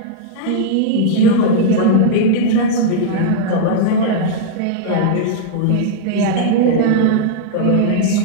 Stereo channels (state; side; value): different; both; correlation -0.02